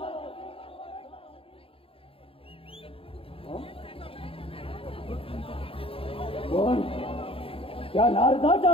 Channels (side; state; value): right; late; 0.27 ms